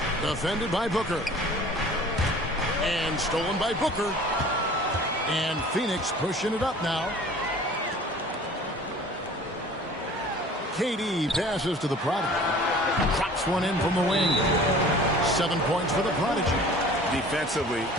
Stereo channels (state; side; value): normal; both; correlation 0.46